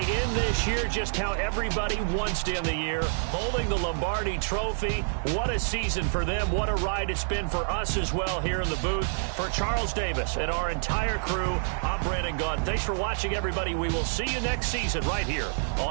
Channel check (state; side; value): silent; left; 60 dB below the other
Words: This year, just how everybody wants to end the year, holding the Lombardi Trophy. What a season for them. What a ride it's been for us as well here in the booth. For Charles Davis and our entire crew, I'm Brandon Gaudin. Thanks for watching, everybody. We will see you next season right here